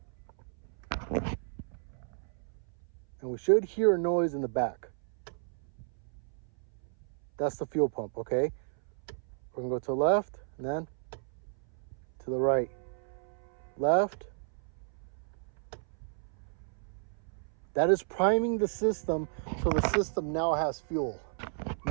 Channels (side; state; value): left; silent; 56 dB below the other